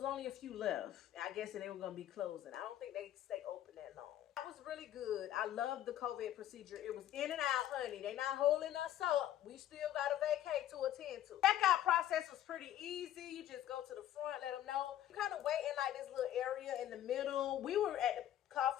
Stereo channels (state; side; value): quieter; right; 12.0 dB